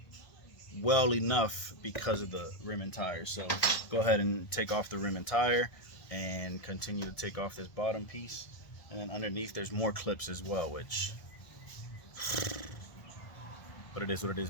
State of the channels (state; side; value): late; right; 1.7 ms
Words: well enough because of the rim and tire. So go ahead and take off the rim and tire and continue to take off this bottom piece. And then underneath there's more clips as well, which, but it is what it is,